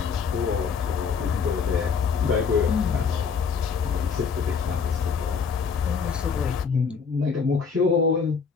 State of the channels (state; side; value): quieter; right; 5.9 dB